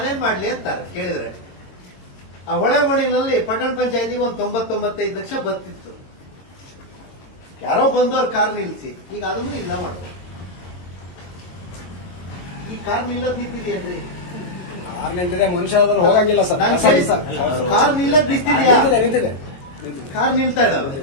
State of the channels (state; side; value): late; right; 22 ms